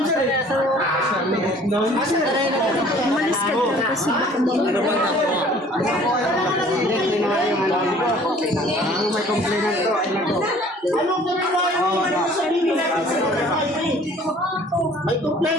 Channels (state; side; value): normal; both; correlation 0.52